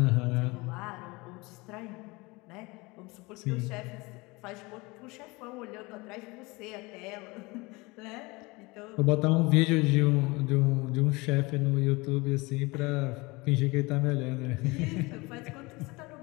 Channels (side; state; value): right; quieter; 24.3 dB